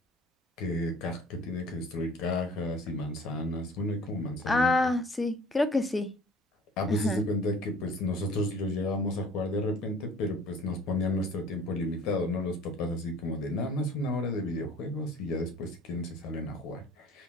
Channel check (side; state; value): both; normal; correlation 0.49